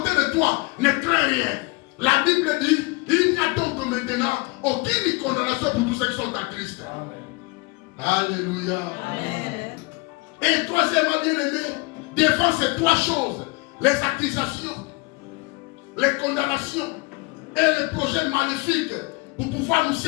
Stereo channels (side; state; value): right; quieter; 26.7 dB